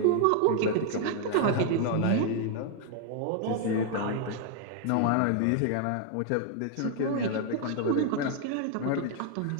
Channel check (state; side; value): different; both; correlation 0.00